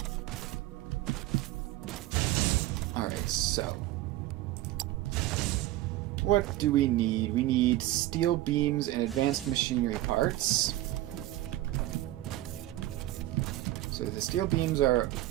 Alright, so what do we need? We need steel beams and advanced machinery parts. So the steel beams are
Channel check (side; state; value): left; quieter; 15.6 dB